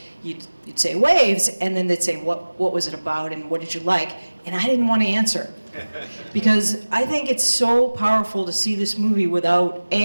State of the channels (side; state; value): both; inverted; correlation -1.00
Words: You'd say Waves, and then they'd say, what was it about and what did you like? And I didn't want to answer. Because I think it's so powerful to see this movie without